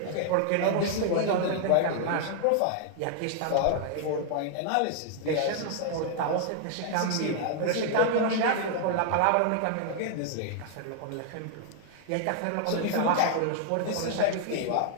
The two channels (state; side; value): different; both; correlation 0.00